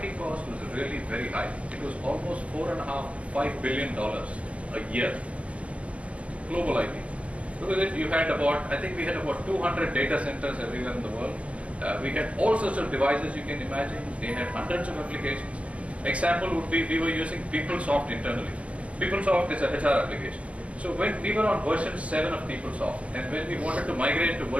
really very high. It was almost $4.5 billion a year, global IT. Because you had about, I think we had about 200 data centers everywhere in the world. We had all sorts of devices you can imagine. They had hundreds of applications. Example would be, we were using PeopleSoft internally. PeopleSoft is a HR application. So when we were on version 7 of PeopleSoft, and when we wanted to migrate to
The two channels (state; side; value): late; left; 0.063 ms